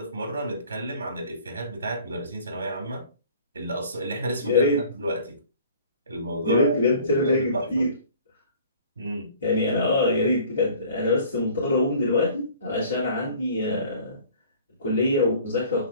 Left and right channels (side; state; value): both; inverted; correlation -0.50